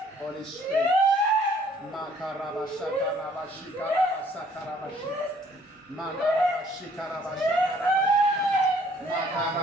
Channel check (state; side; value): normal; both; correlation 0.60